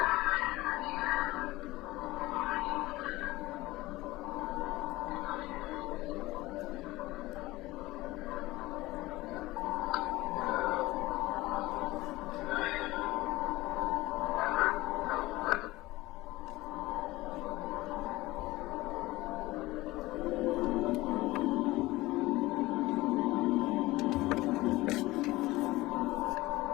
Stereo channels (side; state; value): right; quieter; 19.3 dB